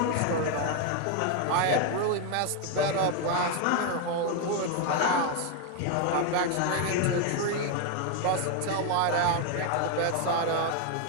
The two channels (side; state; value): both; different; correlation 0.01